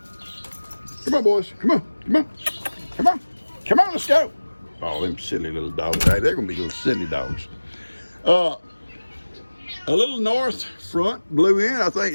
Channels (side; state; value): both; inverted; correlation -1.00